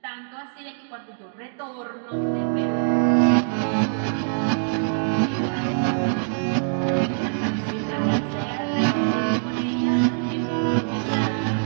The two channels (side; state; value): left; silent; digital silence